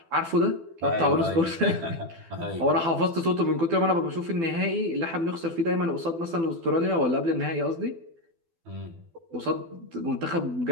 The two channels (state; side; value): late; left; 12 ms